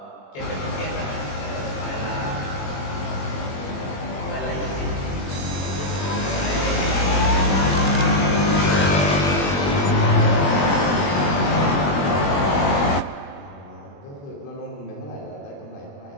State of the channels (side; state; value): right; late; 21 ms